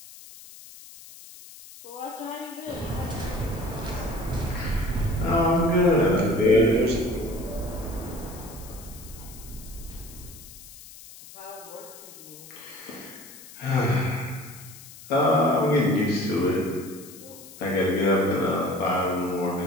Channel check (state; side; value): noise; left; hiss, 18 dB below the sound